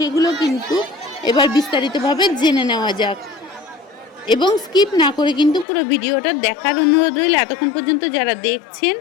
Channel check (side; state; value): right; drops out; at 5.7 s